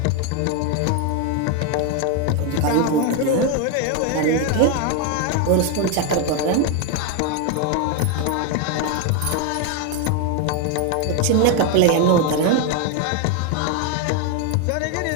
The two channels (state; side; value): different; both; correlation 0.01